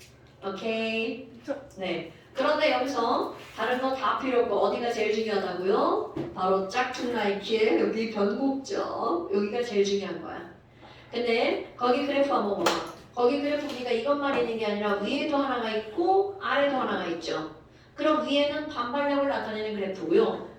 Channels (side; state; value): both; identical; correlation 1.00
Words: 오케이. 네. 그런데 여기서 다른 거 다 필요 없고 어디가 제일 중요하다고요? 바로 짝퉁 나이키의 여기 변곡점. 여기가 제일 중요한 거야. 근데 거기 그래프 한번 봐봐. 거기 그래프 보니까 이것만 있는 게 아니라 위에도 하나가 있고 아래도 하나가 있죠. 그럼 위에는 반발력을 나타내는 그래프고요.